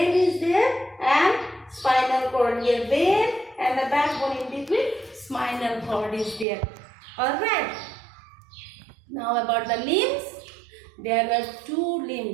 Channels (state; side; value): drops out; left; at 6.5 s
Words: is there and spinal cord here. Brain and the backbone in between, spinal cord is there. Alright. Now about the limbs. There were 2